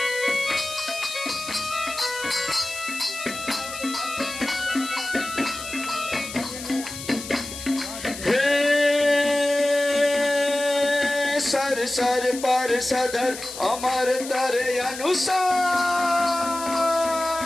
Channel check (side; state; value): left; noise; hiss, 11 dB below the sound